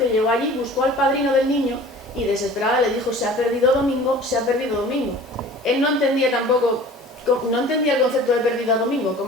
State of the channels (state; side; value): normal; both; correlation 0.44